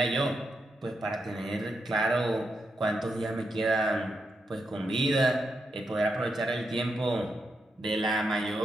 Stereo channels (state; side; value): normal; both; correlation 0.83